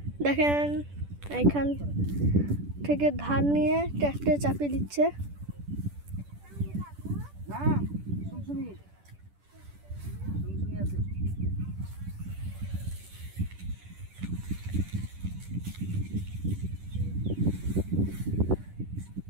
দেখেন এইখান থেকে ধান নিয়ে ট্রাক্টরে চাপিয়ে দিচ্ছে।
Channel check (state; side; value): late; left; 10 ms